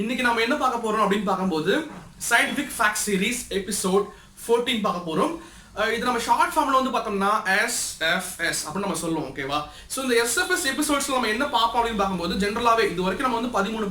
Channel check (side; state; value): both; identical; correlation 1.00